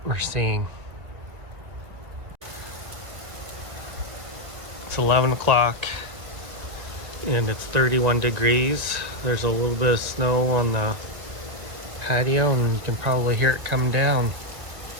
we're seeing. It's 11 o'clock and it's 31 degrees. There's a little bit of snow on the patio and you can probably hear it coming down.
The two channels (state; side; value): late; left; 1.9 ms